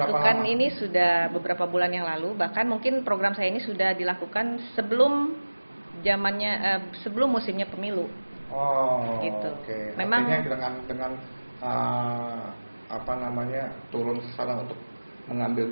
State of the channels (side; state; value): both; inverted; correlation -1.00